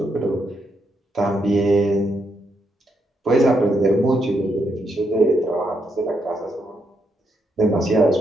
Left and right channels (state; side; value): normal; both; correlation 0.79